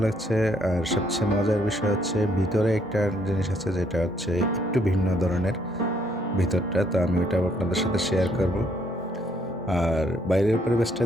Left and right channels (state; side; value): normal; both; correlation 0.69